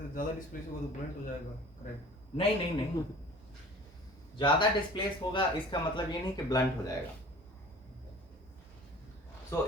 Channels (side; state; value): both; normal; correlation 0.45